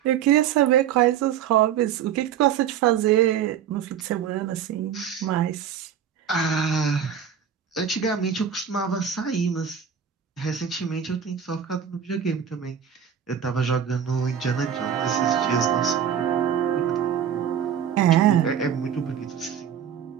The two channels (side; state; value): left; quieter; 8.5 dB